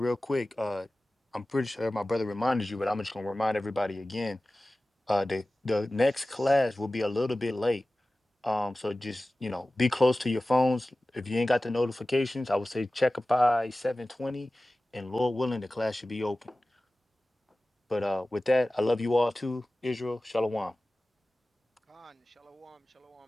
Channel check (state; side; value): normal; both; correlation 0.97